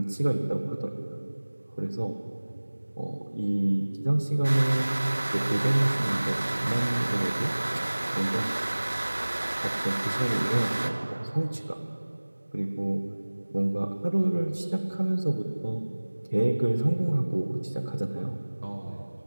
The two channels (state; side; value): inverted; both; correlation -1.00